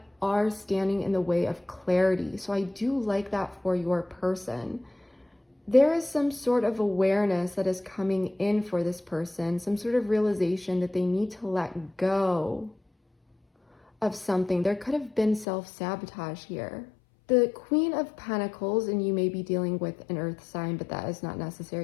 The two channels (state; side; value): drops out; right; at 15.5 s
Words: are standing in the way of clarity. So I do like that for your person. There is some sort of awareness that is coming in for this person, some sort of realization that they need to let go of something. There could have been self-sabotage here. The Queen of Pentacles, and you may be dealing with an earth sign, but that is not